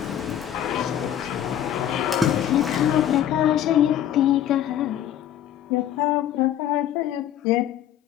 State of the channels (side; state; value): right; quieter; 10.8 dB